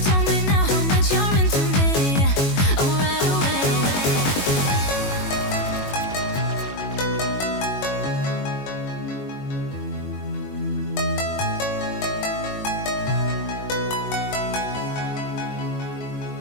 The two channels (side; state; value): right; late; 21 ms